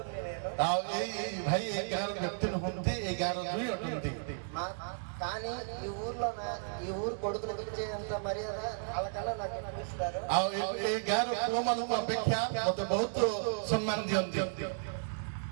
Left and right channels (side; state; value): left; silent; digital silence